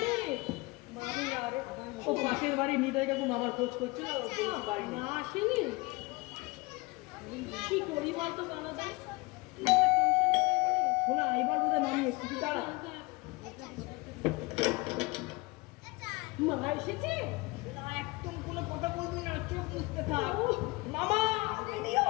মামি আর ও পাশের বাড়ি নিতাই কাকু মামার খোঁজ করছিল, বলছি বাড়ি না। না আসেনি। কি করি বলতো গনাদা? শোনা, এবার বোধহয় মামি এসছে, তুই দাঁড়া। মা এসেছে? না, একদম কোনো কথা বলবি না, চোখ মুছতে থাক। মামা রেডি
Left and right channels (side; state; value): right; quieter; 24.3 dB